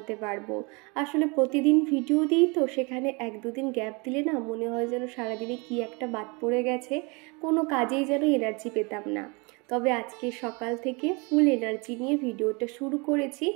পারবো। আসলে প্রতিদিন ভিডিও দিই তো, সেখানে এক দুদিন গ্যাপ দিলে না মনে হয় যেন সারাদিনে কি একটা বাদ পড়ে গেছে, কোনো কাজেই যেন এনার্জি পেতাম না। তবে আজকে সকাল থেকে ফুল এনার্জি নিয়ে ভিডিওটা শুরু করেছি।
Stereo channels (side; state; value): left; quieter; 29.5 dB